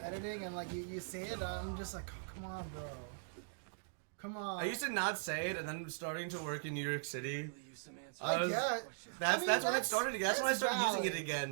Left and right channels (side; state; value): left; silent; digital silence